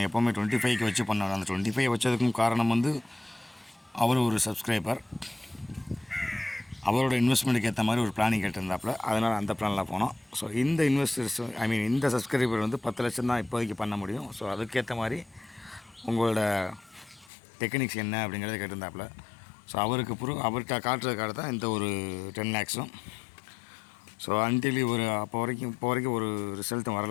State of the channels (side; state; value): right; drops out; at 17.3 s